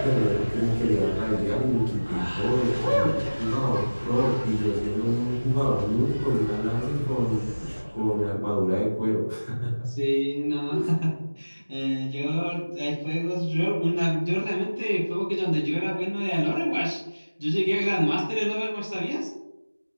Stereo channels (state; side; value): inverted; both; correlation -1.00